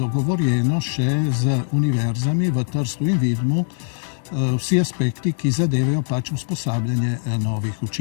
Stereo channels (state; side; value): silent; right; 65 dB below the other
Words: še z univerzami v Trstu in Vidmu vsi aspekti, ki zadevajo pač usposabljanje novih